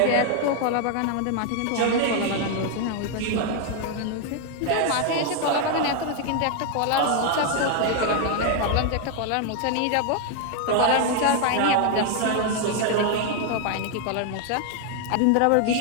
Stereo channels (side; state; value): both; different; correlation 0.00